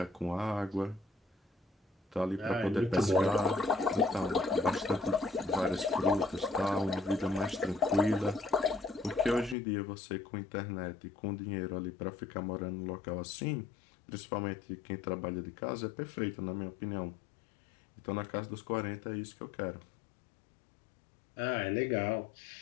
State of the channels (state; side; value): drops out; right; at 9.6 s